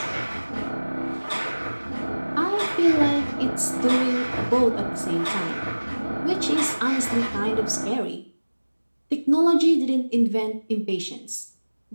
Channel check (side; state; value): both; inverted; correlation -1.00